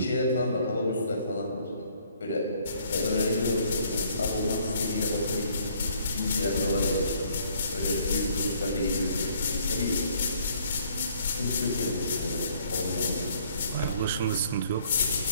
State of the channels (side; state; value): both; inverted; correlation -0.62